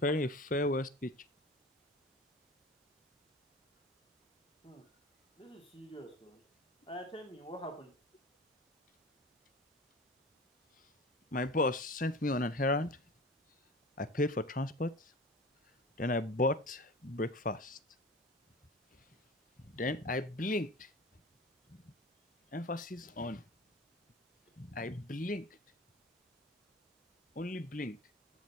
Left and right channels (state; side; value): normal; both; correlation 0.36